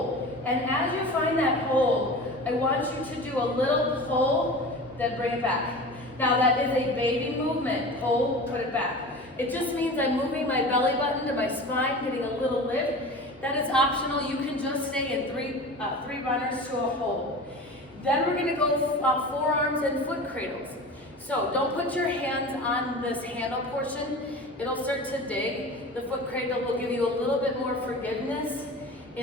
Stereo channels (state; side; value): normal; both; correlation 0.34